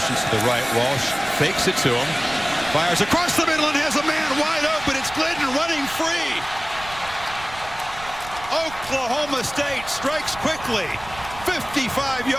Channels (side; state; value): right; noise; rumble, 17 dB below the sound